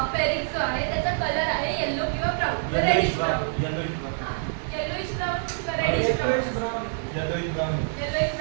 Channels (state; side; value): silent; left; digital silence